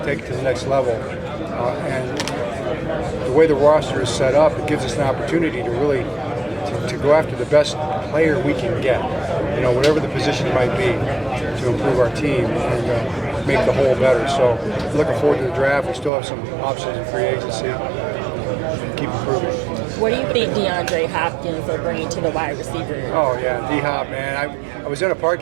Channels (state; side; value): drops out; left; at 16.1 s